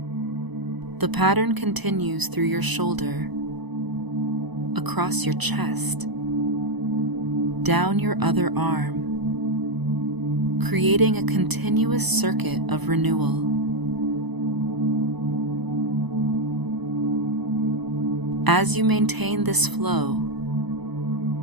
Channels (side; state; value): left; late; 1.0 ms